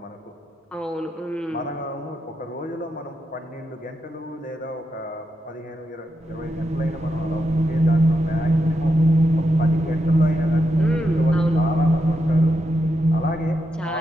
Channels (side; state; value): both; normal; correlation 0.85